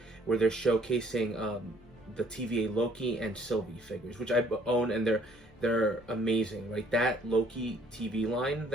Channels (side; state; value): left; noise; hum, 30 dB below the sound